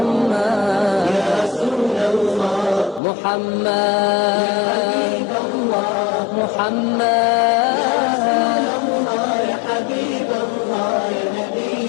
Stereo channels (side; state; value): right; drops out; at 3.0 s